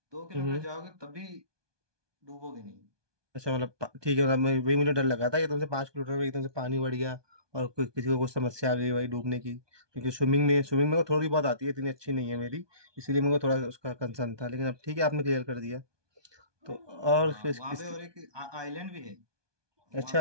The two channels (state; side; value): late; left; 1.2 ms